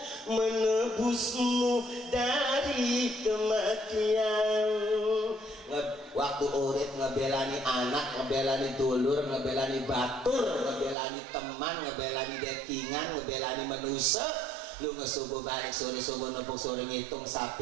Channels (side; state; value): left; drops out; at 11.0 s